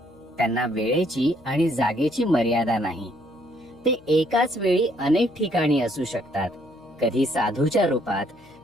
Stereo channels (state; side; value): noise; left; hum, 26 dB below the sound